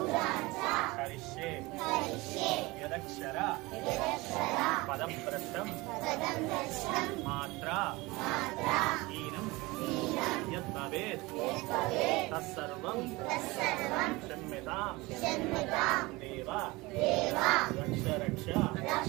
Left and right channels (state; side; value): quieter; left; 22.5 dB